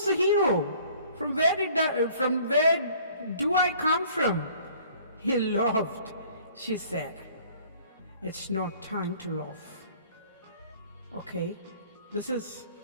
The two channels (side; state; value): both; inverted; correlation -0.54